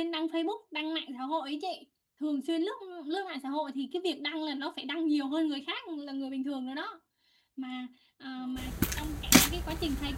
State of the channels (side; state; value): both; identical; correlation 1.00